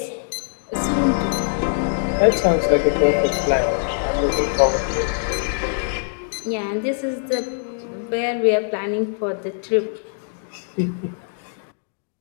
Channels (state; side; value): silent; right; digital silence